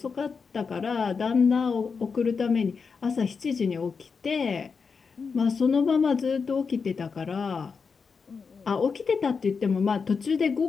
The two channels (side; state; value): right; quieter; 5.4 dB